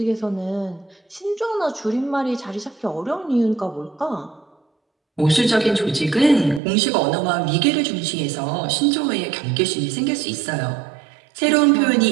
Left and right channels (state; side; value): drops out; left; at 6.6 s